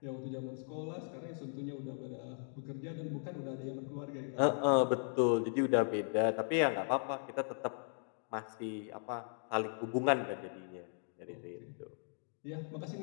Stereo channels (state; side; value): silent; right; digital silence